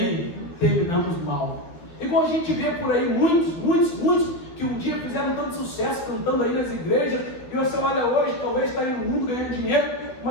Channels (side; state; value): right; late; 12 ms